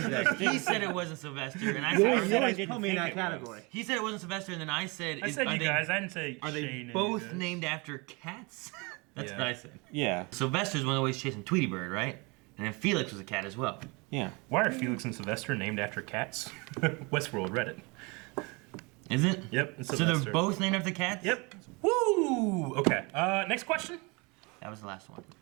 thing. He said it wasn't Sylvester, and I You said, always didn't put me in think that it was. category. he said it wasn't Sylvester, and then I said, I said are you they- guys. I didn't say Are they Shane and both you guys. named after cats? That's Yeah. what I said. Yeah. Sylvester's one always chasing Tweety Bird, right? And then Felix was a cat as well. Yeah. Why are Felix and Sylvester named after cats? Westworld Reddit. Is it? Yep. It's So Sylvester. they're both named after cats? Yep. Woo! Okay. Next question. That was the last one.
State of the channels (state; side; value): quieter; left; 28.3 dB